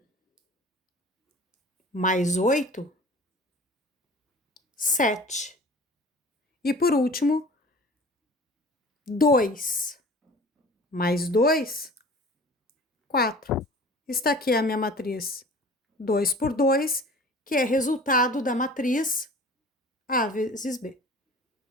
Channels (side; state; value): both; normal; correlation 0.44